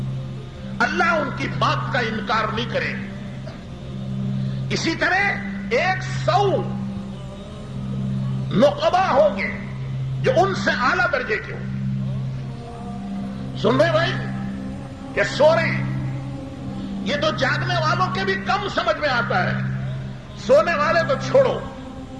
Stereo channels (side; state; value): both; identical; correlation 1.00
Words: اللہ ان کی بات کا انکار نہیں کرے گا۔ اسی طرح 100 نقبہ ہوں گے جو ان سے اعلیٰ درجے کے ہوں گے۔ سن رہے بھائی کہ سو رہے ہیں؟ یہ تو جاگنے والوں کے بھی کم سمجھ میں آتا ہے، سونے والے تو چھوڑو،